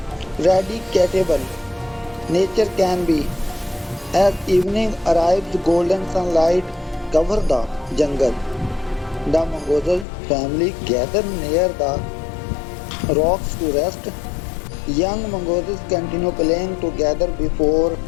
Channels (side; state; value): right; drops out; at 10.1 s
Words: nature can be. As evening arrives, golden sunlight covers the jungle. The Mongoose family gather near the rocks to rest. Young mongooses continue playing together before